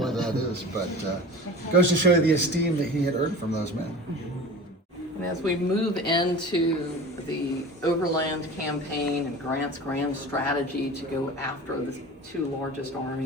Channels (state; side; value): normal; both; correlation 0.37